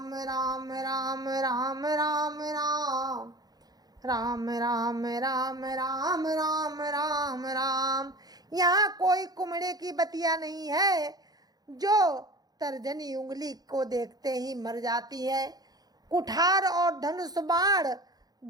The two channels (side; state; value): left; late; 0.19 ms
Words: राम राम राम राम राम राम राम राम राम राम राम राम। यहाँ कोई कुमड़े की बतिया नहीं है जो तर्जनी उंगली को देखते ही मर जाती है। कुठार और धनुष बाण